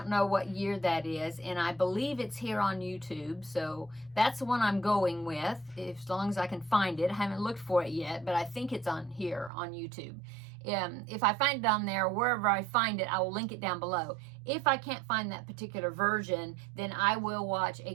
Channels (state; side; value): drops out; left; at 9.5 s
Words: know what year that is, and I believe it's here on YouTube, so that's the one I'm going with, as long as I can find it. I haven't looked for it yet, but I think it's on here on YouTube. If I find it on there, wherever I find it, I will link it down below. If I can't find that particular version, then I will watch A